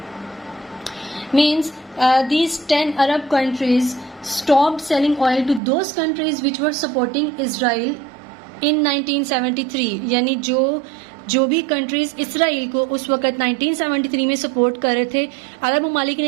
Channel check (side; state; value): left; drops out; at 5.6 s